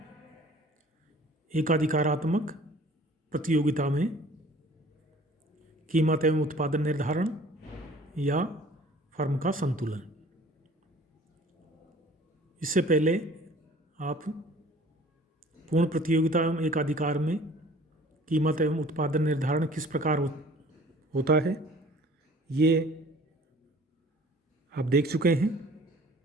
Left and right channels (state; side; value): normal; both; correlation 0.50